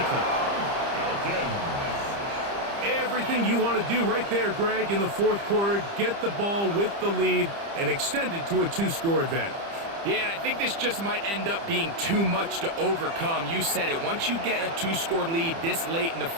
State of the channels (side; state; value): left; late; 30 ms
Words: Everything you want to do right there, Greg, in the fourth quarter. Get the ball with the lead and extend it to a 2-score advantage. Yeah, and I think this just might end up being too much to overcome. You said it. Once you get a 2-score lead this late in the